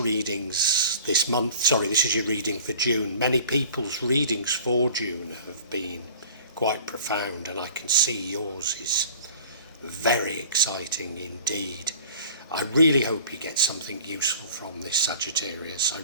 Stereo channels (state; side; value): inverted; both; correlation -0.46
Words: this month, this is your reading for June, many people's readings for June have been quite profound, and I can see yours is very exciting indeed. I really hope you get something useful from this, Sagittarius. I